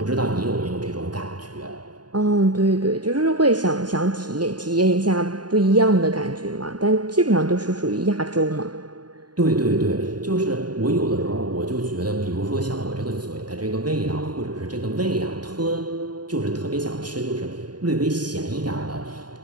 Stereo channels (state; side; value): late; left; 0.70 ms